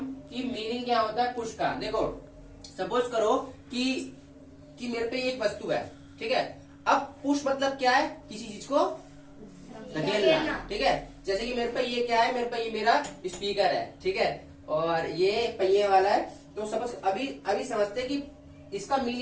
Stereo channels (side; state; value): both; identical; correlation 1.00